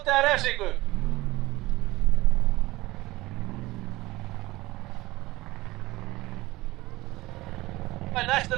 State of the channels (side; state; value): left; quieter; 19.3 dB